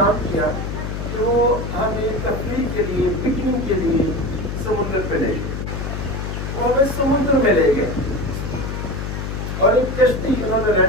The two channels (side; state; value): left; noise; hum, 5 dB below the sound